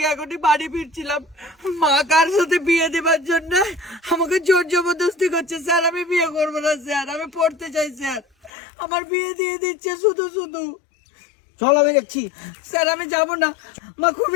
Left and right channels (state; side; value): drops out; right; at 8.5 s